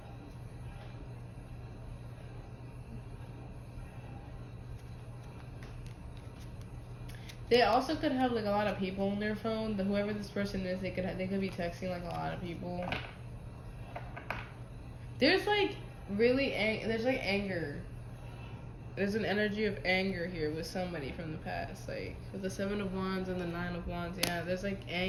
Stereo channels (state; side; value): identical; both; correlation 1.00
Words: They also could have like a lot of people on their phone. Whoever this person is, they could be texting like a lot of people. There's like there's like anger. There's an energy of anger here with somebody from the past, like with the Seven of Wands and the Nine of Wands. Yeah, there's like